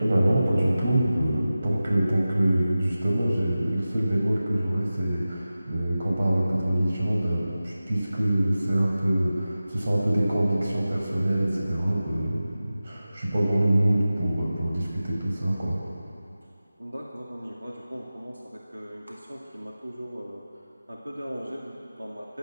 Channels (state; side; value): inverted; both; correlation -0.95